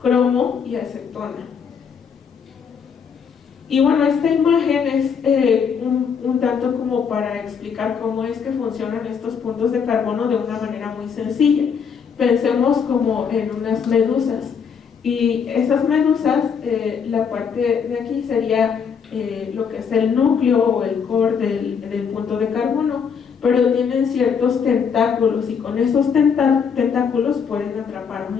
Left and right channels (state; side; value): quieter; right; 6.6 dB